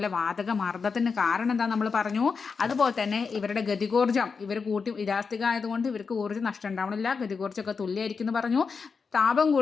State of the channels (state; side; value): quieter; right; 5.3 dB